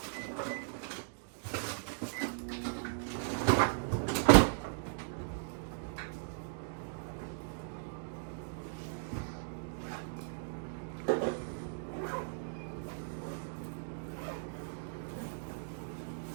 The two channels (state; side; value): silent; left; digital silence